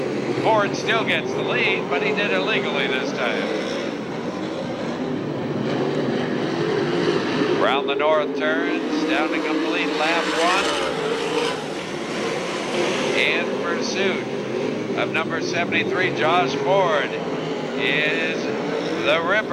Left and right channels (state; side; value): identical; both; correlation 1.00